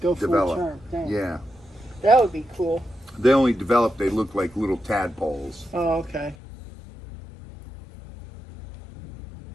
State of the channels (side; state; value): right; drops out; at 6.4 s